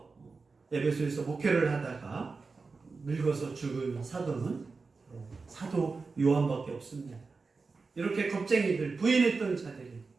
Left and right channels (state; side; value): quieter; left; 4.3 dB